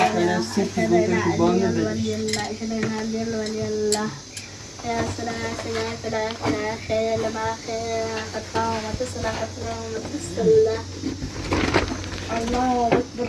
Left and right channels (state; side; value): identical; both; correlation 1.00